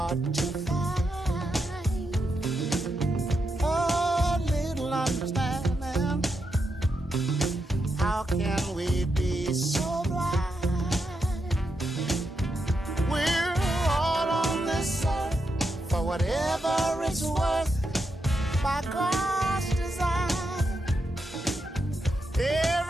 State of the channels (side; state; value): both; normal; correlation 0.84